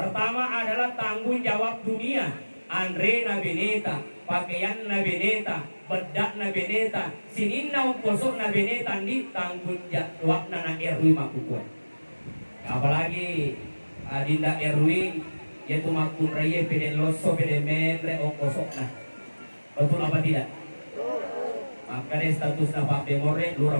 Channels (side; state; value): both; inverted; correlation -1.00